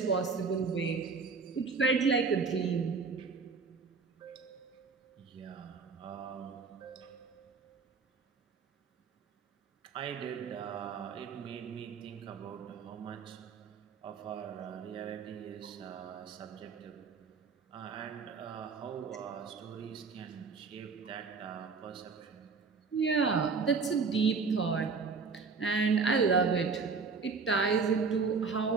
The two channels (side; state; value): left; quieter; 4.9 dB